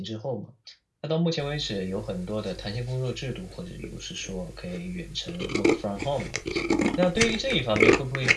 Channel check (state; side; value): identical; both; correlation 1.00